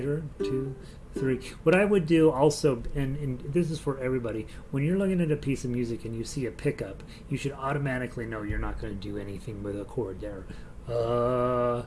2, 3. What I would do also, and this is for everybody, when you're looking at a piece of music and you see a pickup, you should automatically know you're not going to do anything with a chord there.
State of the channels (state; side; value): identical; both; correlation 1.00